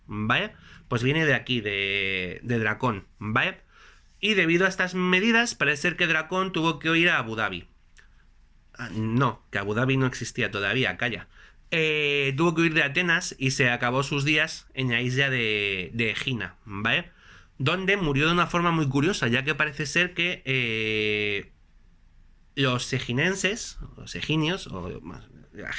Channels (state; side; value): identical; both; correlation 1.00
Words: ¿vale? Pues viene de aquí, de Dracón, ¿vale? Y debido a estas medidas, parece ser que Dracón tuvo que ir a Abu Dhabi. No, que Abu Dhabi no existía todavía, calla. Tuvo que huir de Atenas y se acabó sus días en la isla de Egina, ¿vale? Donde murió de una forma muy curiosa, ya que parece ser que los eginenses, los eginios, o la